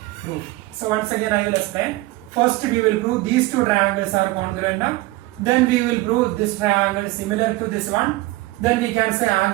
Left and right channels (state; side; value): quieter; left; 19.4 dB